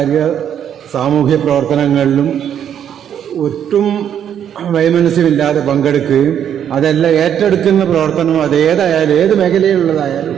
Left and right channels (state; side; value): quieter; left; 9.3 dB